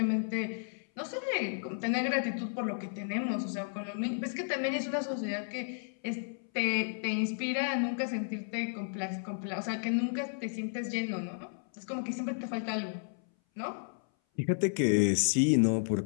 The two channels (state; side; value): silent; right; 56 dB below the other